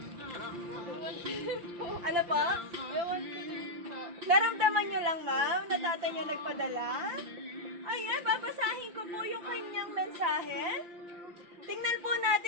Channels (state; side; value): late; left; 5.8 ms